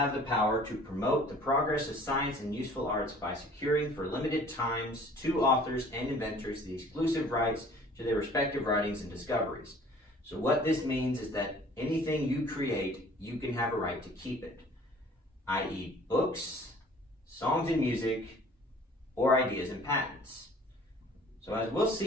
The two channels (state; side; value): normal; both; correlation 0.51